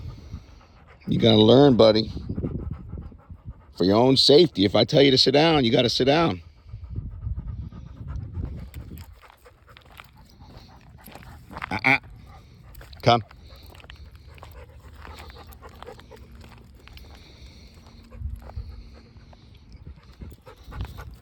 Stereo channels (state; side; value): identical; both; correlation 1.00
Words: You gotta learn, buddy. For your own safety. If I tell you to sit down, you gotta sit down. Uh-uh. Come.